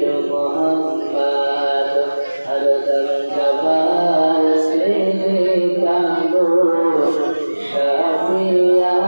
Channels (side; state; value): both; inverted; correlation -1.00